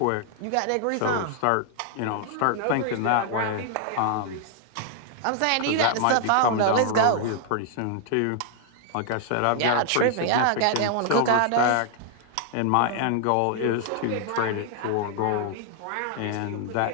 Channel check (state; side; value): different; both; correlation 0.00